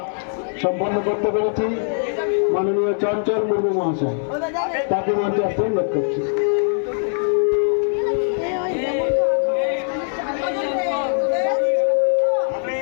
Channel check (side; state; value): right; silent; digital silence